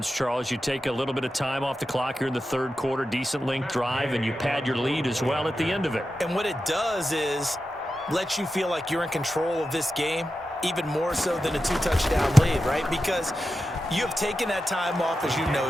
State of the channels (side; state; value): both; normal; correlation 0.91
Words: Charles. You take a little bit of time off the clock here in the third quarter, decent length drive, and you pad your lead as well at the end of it. And what it does is lets you feel like you're in control of this game, even more so than a 2-touchdown lead, right? Because you have taken that time off, as you